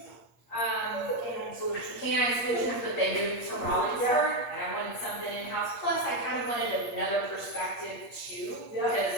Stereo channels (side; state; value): right; late; 8.5 ms